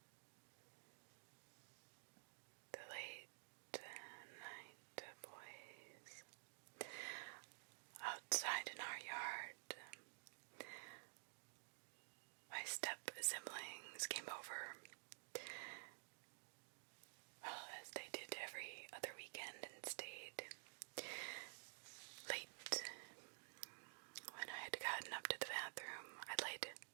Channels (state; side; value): silent; left; digital silence